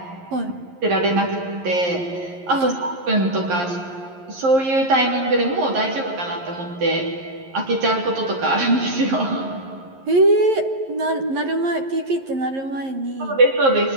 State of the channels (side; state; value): left; late; 11 ms